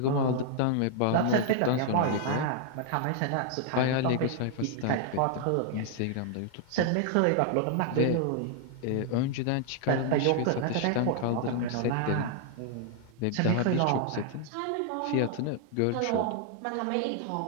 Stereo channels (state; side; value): different; both; correlation 0.00